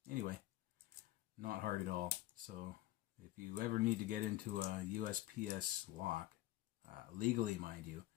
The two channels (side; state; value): right; quieter; 16.2 dB